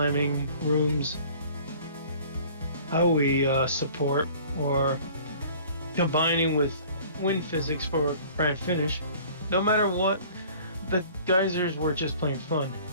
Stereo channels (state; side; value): inverted; both; correlation -0.49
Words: rooms, how we support, or combining with wind physics for a grand finish, no matter what, the geysers were just plain fun.